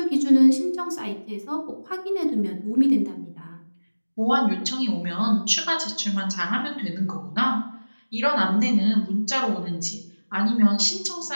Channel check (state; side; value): inverted; both; correlation -1.00